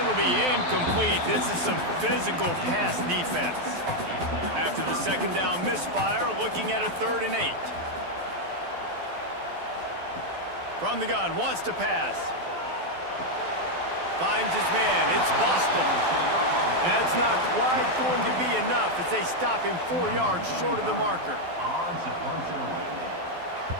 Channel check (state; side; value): late; left; 12 ms